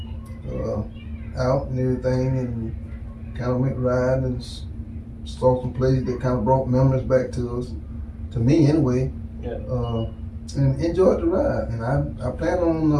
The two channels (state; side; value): identical; both; correlation 1.00